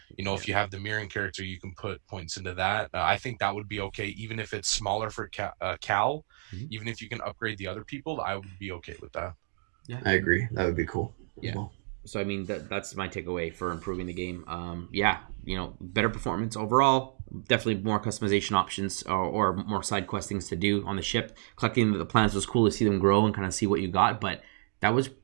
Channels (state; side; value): silent; left; digital silence